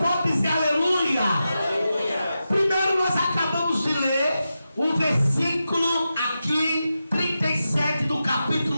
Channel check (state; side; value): inverted; both; correlation -0.90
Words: pode dizer aleluia? Aleluia. Primeiro nós acabamos de ler o versículo aqui, 37 do